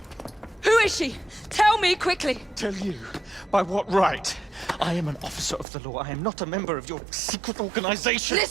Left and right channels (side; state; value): left; drops out; at 5.7 s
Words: Who is she? Tell me quickly! Tell you? By what right? I am an officer of the law. I am not a member of your secret organization.